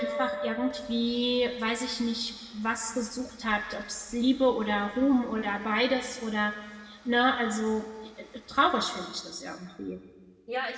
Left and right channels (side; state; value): both; identical; correlation 1.00